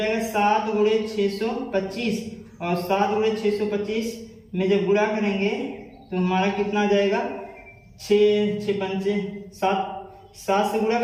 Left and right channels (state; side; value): identical; both; correlation 1.00